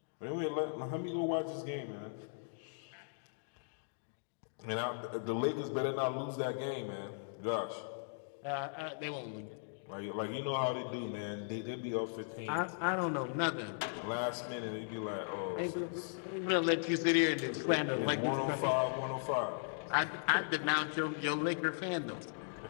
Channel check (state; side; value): silent; right; digital silence